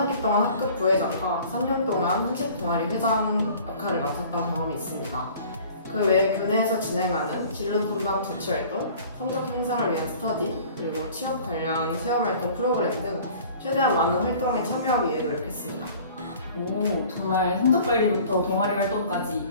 동안 학급 부회장과 3년 동안 한식 동아리 회장 역할을 맡았던 경험이 있습니다. 그 외에 교내에서 진행하는 진로 탐방 자치 활동, 성적 향상을 위한 스터디, 그리고 취업 관련 체험 활동 프로그램 등 최대한 많은 활동에 참여하기 위해 노력했습니다. 오, 정말 성적 관리부터 동아리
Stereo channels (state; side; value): inverted; both; correlation -0.48